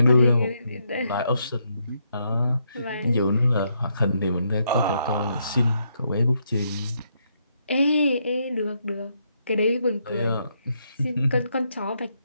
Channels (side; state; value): both; inverted; correlation -0.77